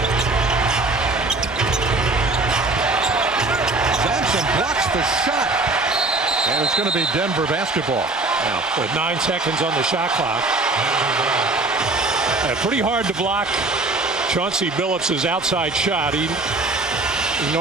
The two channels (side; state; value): left; quieter; 3.2 dB